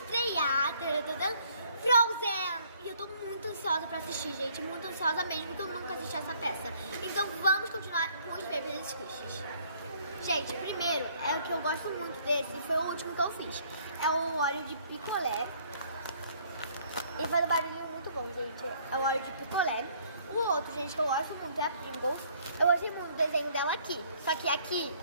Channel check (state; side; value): inverted; both; correlation -0.61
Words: Frozen. E eu tô muito ansiosa pra assistir, gente. Muito ansiosa mesmo, porque eu nunca assisti essa peça. Então vamos continuar com os Paper Squishes. Gente, primeiro, é o que eu gosto muito desse, foi o último que eu fiz. É o óleo de picolé. E faz um barulhinho muito bom, gente. É o óleo de picolé. O outro, gente, que eu gosto muito é a Pringles. Eu gostei muito do desenho dela aqui. Só que aqui,